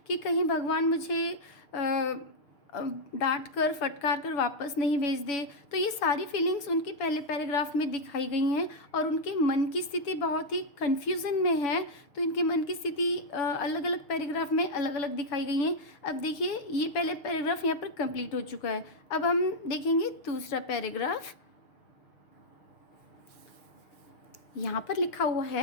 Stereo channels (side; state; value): right; late; 6.6 ms